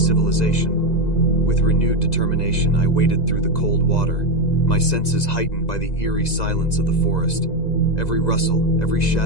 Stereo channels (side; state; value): right; late; 2.0 ms